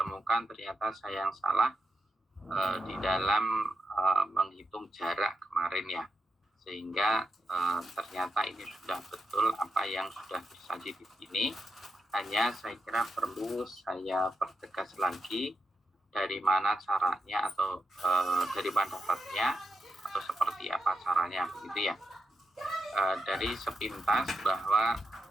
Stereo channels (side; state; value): both; normal; correlation 0.85